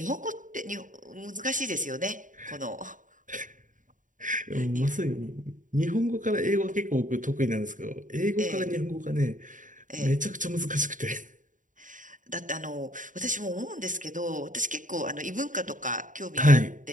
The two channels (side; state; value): left; late; 0.38 ms